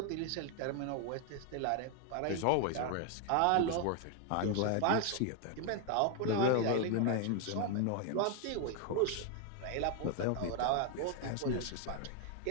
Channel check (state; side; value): different; both; correlation 0.00